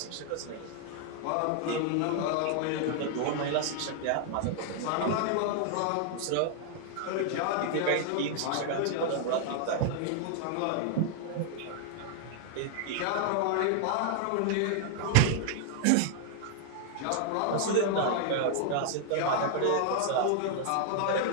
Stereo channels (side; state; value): both; different; correlation 0.00